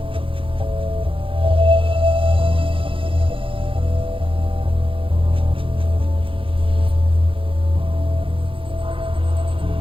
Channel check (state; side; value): late; left; 0.25 ms